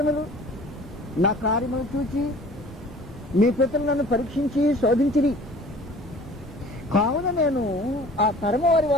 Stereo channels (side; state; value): both; normal; correlation 0.47